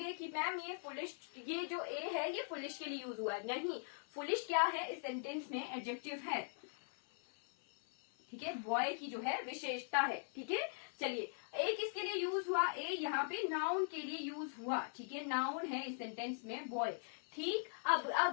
कि मैम ये फुलिश, ये जो ए है ये फुलिश के लिए यूज हुआ है, नहीं। फुलिश क्या है, इस सेंटेंस में एडजेक्टिव है, ठीक है। बॉय की जो है विशेषता है, ठीक है। चलिए ए किसके लिए यूज हुआ, ए यहाँ पे नाउन के लिए यूज हुआ, ठीक है। नाउन है इस सेंटेंस में बॉय, ठीक। अब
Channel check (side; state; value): right; silent; 50 dB below the other